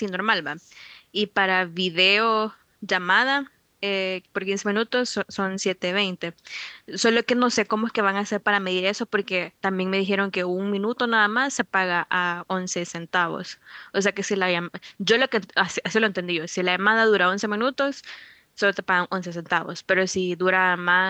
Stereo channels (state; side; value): identical; both; correlation 1.00